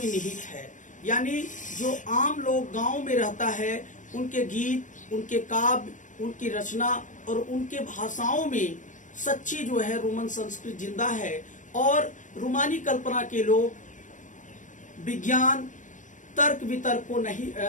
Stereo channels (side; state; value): right; late; 0.37 ms